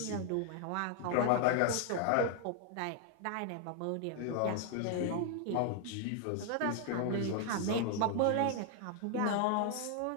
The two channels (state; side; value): different; both; correlation 0.00